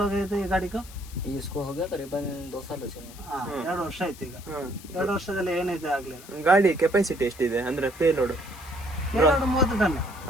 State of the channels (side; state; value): left; noise; hiss, 19 dB below the sound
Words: ಹೋಗೈತೆ ಈ ಗಾಡಿಗೂ? इसको हो गया करीबन 2 साल हो चुके. 2 ವರ್ಷ ಆಯ್ತು ಈಗ. 2 ವರ್ಷದಲ್ಲಿ ಏನಿದೆ ಆಗ್ಲಿಲ್ಲ. ಗಾಡಿ ಕೆಪಾಸಿಟಿ ಎಷ್ಟಿದೆ ಅಂದ್ರೆ ಪೇಲೋಡ್? 30 ಟನ್